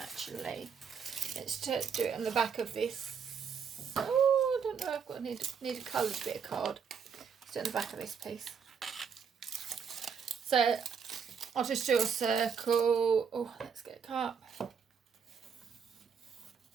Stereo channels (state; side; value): quieter; left; 6.5 dB